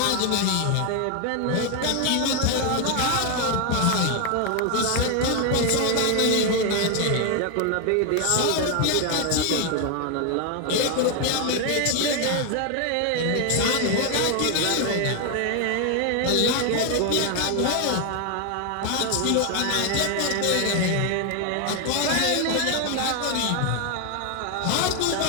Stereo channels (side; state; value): both; different; correlation 0.01